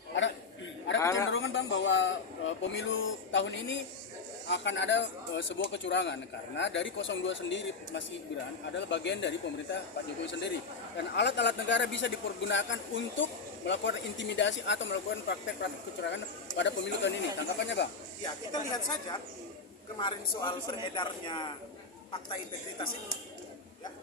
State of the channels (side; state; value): right; quieter; 4.4 dB